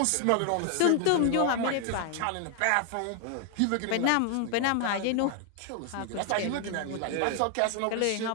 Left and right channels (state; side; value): different; both; correlation 0.00